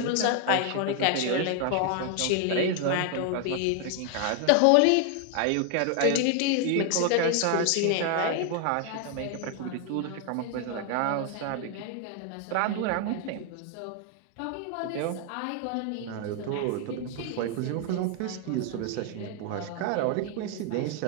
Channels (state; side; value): different; both; correlation 0.00